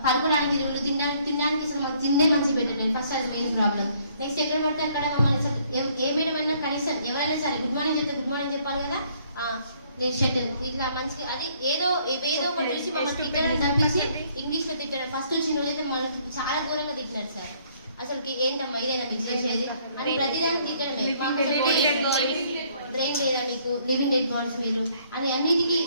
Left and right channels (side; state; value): both; inverted; correlation -0.64